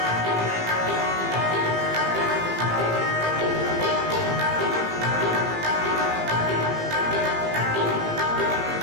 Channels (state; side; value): late; left; 18 ms